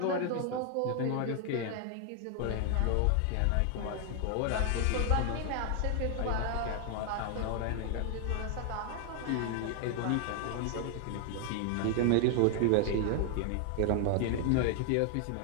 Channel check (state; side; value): different; both; correlation 0.00